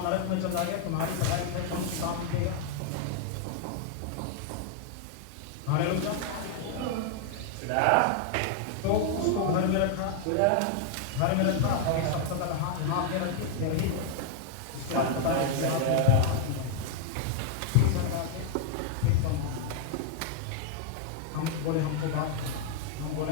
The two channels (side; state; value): both; different; correlation 0.00